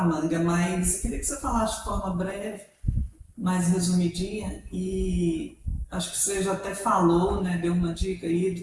manga, mas eu queria que você falasse de forma breve, mais resumidinha, e acho que você já até falou, né, deu uma dica aí do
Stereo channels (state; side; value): identical; both; correlation 1.00